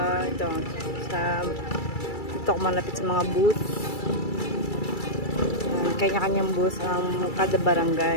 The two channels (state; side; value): late; right; 2.3 ms